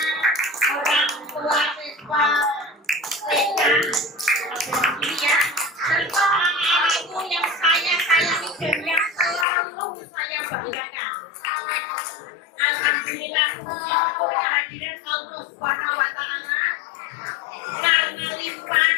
alhamdulillah bersyukur kehadiran Allah Subhanahu wa taala karena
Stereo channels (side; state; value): right; drops out; at 9.5 s